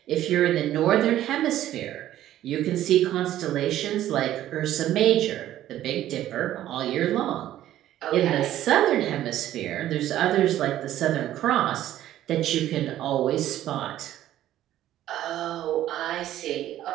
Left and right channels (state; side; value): quieter; left; 12.9 dB